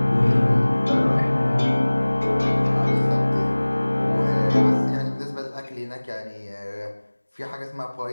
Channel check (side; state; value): both; inverted; correlation -1.00